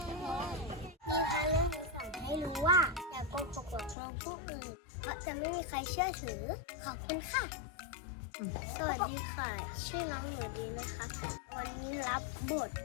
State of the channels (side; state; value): right; drops out; at 4.0 s